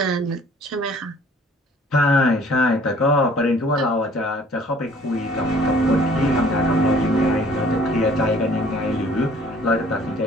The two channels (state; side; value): normal; both; correlation 0.55